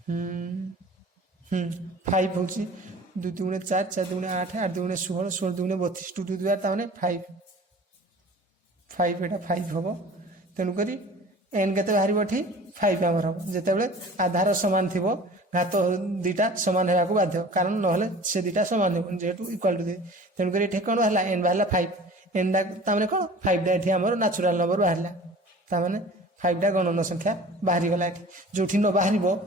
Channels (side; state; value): both; normal; correlation 0.43